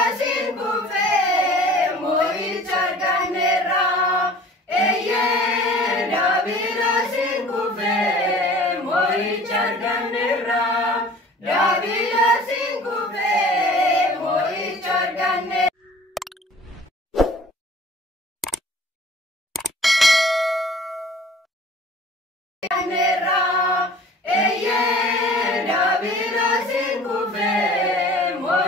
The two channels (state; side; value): normal; both; correlation 0.47